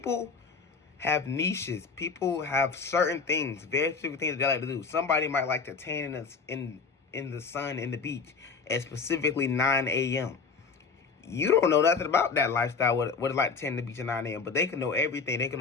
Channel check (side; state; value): right; quieter; 5.0 dB